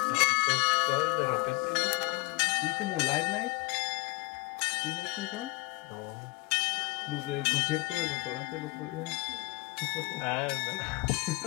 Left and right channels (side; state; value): right; quieter; 24.8 dB